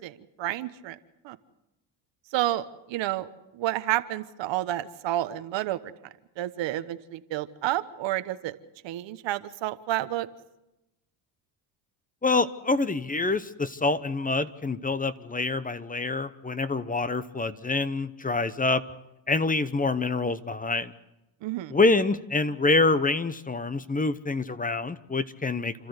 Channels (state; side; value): normal; both; correlation 0.24